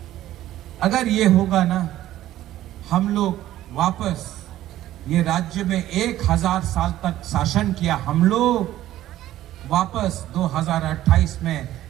अगर ये होगा ना, हम लोग वापस ये राज्य में 1000 साल तक शासन किया, हम लोग वापस 2028 में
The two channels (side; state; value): left; quieter; 13.8 dB